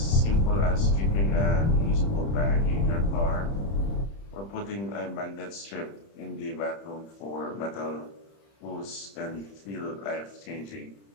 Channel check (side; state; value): right; late; 30 ms